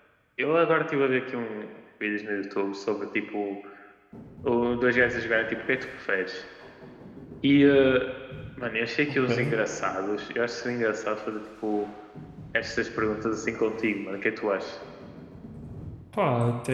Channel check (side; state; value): both; identical; correlation 1.00